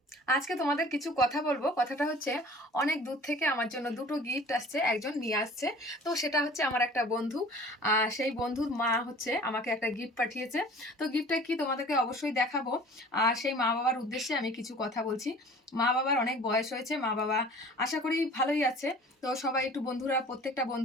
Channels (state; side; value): normal; both; correlation 0.46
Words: আজকে তোমাদের কিছু কথা বলবো। কথাটা হচ্ছে, অনেক দূর থেকে আমার জন্য দুটো গিফট আসছে, একজন নিয়ে আসছে। তো সেটা হচ্ছে আমার একটা বন্ধু। সেই বন্ধুর মা হচ্ছে আমাকে একটা গিফট পাঠিয়েছে। তো গিফটটা কি তোমাদেরকে অবশ্যই দেখাবো। আর সেই মা বাবার উদ্দেশ্যে আমি কিছু কথা বলছি। মা বাবার অনেক বয়স হয়েছে, মা বাবা আশা করি ভালোই আছে। তো সবাই একটু বন্ধুরা, প্রত্যেকটা